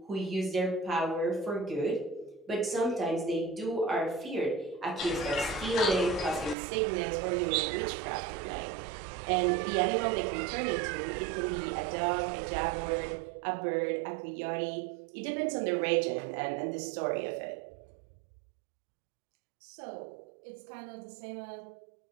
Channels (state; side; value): drops out; left; at 6.6 s